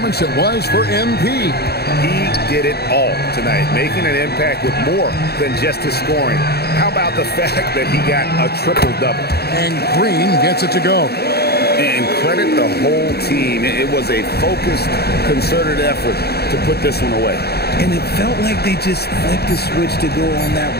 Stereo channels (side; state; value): right; late; 0.47 ms